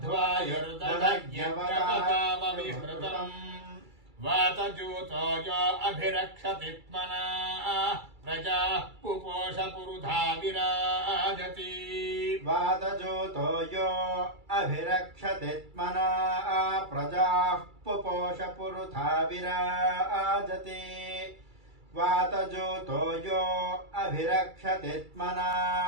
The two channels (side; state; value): left; late; 2.3 ms